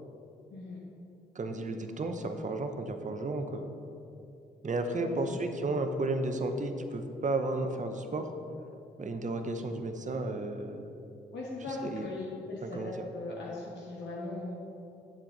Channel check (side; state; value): both; normal; correlation 0.57